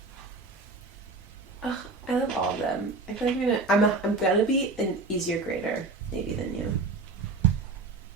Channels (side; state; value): left; quieter; 3.6 dB